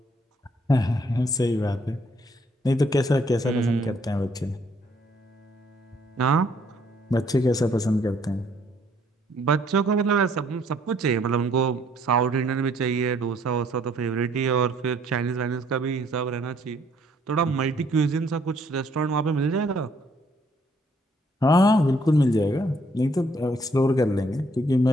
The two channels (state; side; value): normal; both; correlation 0.65